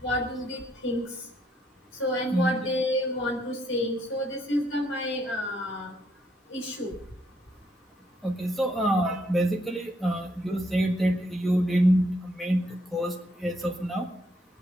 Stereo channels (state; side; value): normal; both; correlation 0.73